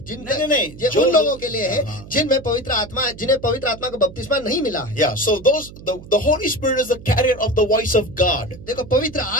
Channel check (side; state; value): right; noise; hum, 17 dB below the sound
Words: उन लोगों के लिए है जिनमें पवित्र आत्मा का बपतिस्मा नहीं मिला है। Yeah. So the Hoली Spirit is the carrier of the voice of God. देखो पवित्र